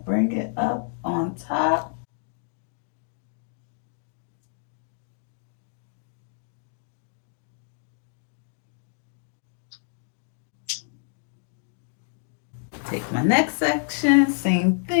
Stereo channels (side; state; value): right; silent; digital silence